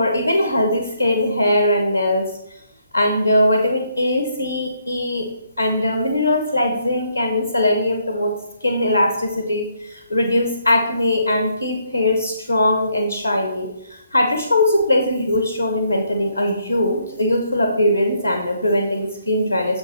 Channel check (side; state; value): both; inverted; correlation -0.73